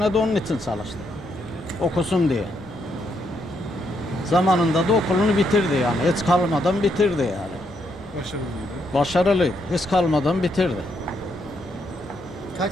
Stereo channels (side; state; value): both; normal; correlation 0.76